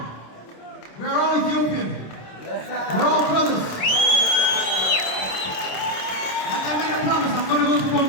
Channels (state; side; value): late; right; 27 ms